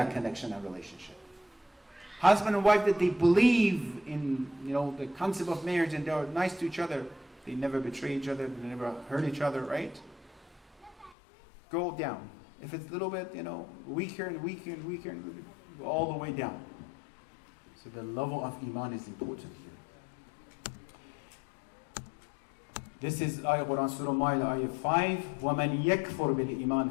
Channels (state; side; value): drops out; right; at 11.2 s